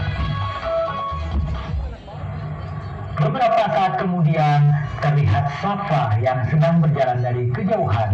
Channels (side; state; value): both; identical; correlation 1.00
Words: Beberapa saat kemudian terlihat Safa yang sedang berjalan dari